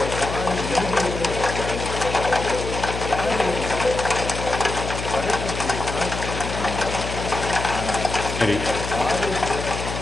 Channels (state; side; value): noise; left; hum, 6 dB below the sound